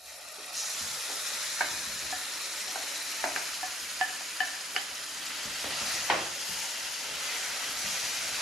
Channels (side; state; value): both; normal; correlation 0.64